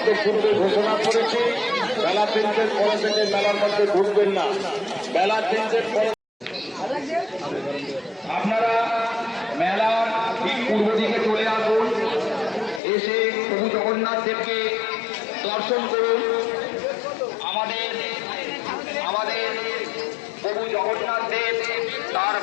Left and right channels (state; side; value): drops out; right; at 12.8 s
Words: তো পূর্বে ঘোষণা করেছি বেলা 3টের পরে থেকে মেলার মধ্যে ঢুকবেন না। বেলা 3টের পরে আপনারা মেলার ঠিক পূর্ব দিকে চলে আসুন, এসে প্রভু জগন্নাথ দেবকে দর্শন করুন। আমাদের প্রভু জগন্নাথ দেব তার